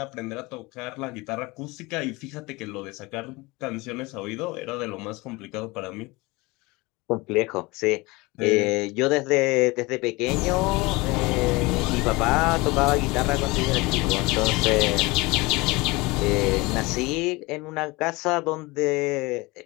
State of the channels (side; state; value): right; quieter; 23.4 dB